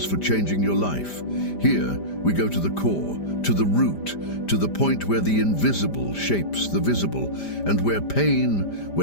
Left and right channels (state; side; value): late; right; 5.0 ms